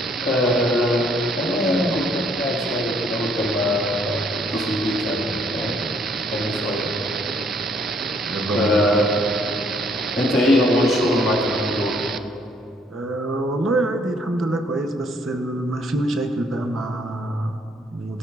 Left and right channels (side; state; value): both; normal; correlation 0.66